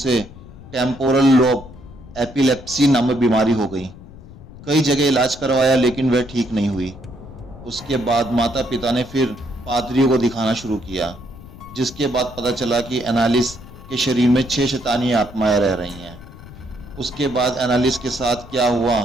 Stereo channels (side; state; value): left; noise; rumble, 18 dB below the sound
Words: टेम्पोरल लोब एपिलेप्सी नामक बीमारी हो गई। कई जगह इलाज करवाया लेकिन वह ठीक नहीं हुई। उसके बाद माता पिता ने फिर पादरियों को दिखाना शुरू किया, जिसके बाद पता चला कि एनालिस के शरीर में 6 शैतानी आत्माएं रह रही हैं। उसके बाद एनालिस के साथ क्या हुआ,